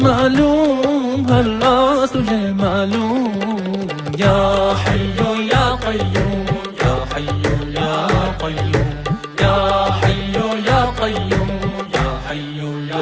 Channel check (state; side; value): identical; both; correlation 1.00